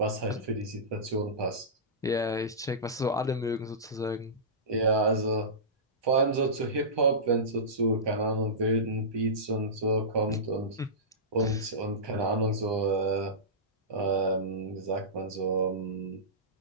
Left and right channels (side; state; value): both; normal; correlation -0.19